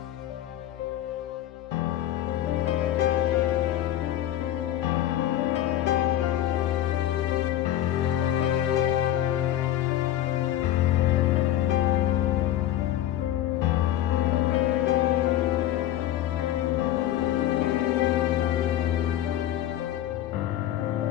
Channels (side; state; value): right; quieter; 12.5 dB